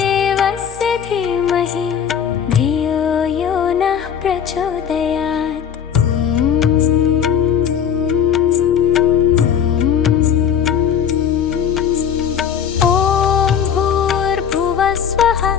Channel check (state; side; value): quieter; right; 8.3 dB